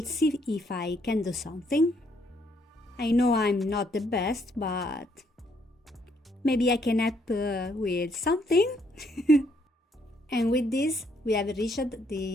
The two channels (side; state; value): both; normal; correlation 0.70